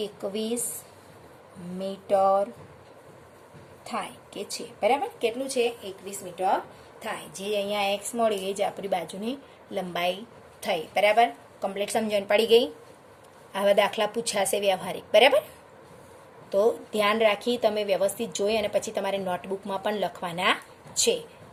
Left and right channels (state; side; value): identical; both; correlation 1.00